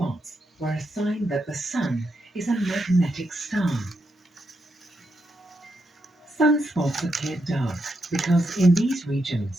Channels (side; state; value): both; normal; correlation 0.83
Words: were a sign that the sun is a magnetic star. Sunspots appear dark because in these